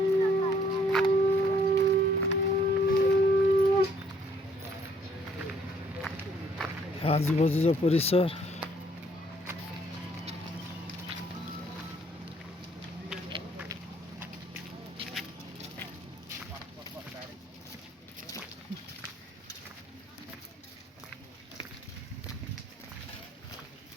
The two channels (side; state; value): both; normal; correlation 0.64